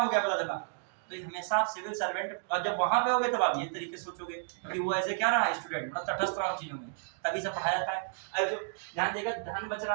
गया, पता चला। तो हमेशा आप सिविल सर्वेंट, और जब वहां पे होगे तब आप ये तरीके से सोचोगे, क्योंकि वो ऐसे क्या रहा है स्टूडेंट, मतलब तटस्थ रहा चीजों में, तभी से पढ़ाया जाता है। अब जो ध्यान देगा, ध्यान बच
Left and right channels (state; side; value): silent; left; digital silence